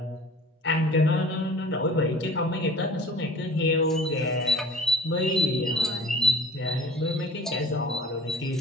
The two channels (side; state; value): both; normal; correlation 0.46